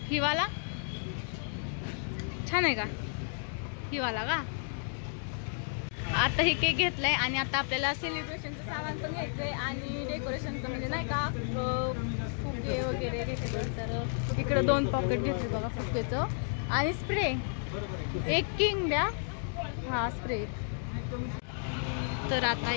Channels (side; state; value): right; silent; 56 dB below the other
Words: हिवाला छान आहे का हिवाला का। आता हे केक घेतलाय आणि आता आपल्याला सेलिब्रेशनचं सामान पण घ्यायचंय आणि डेकोरेशनचं म्हणजे नाही का फुगे वगैरे घेतले। तर इकडं 2 पॉकेट घेतले बघा फुग्याचं आणि स्प्रे एक किंग द्या हा स्प्रे। तर आता